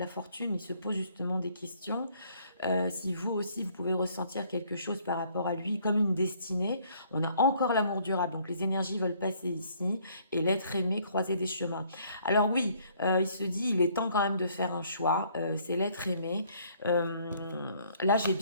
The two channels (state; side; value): inverted; both; correlation -0.63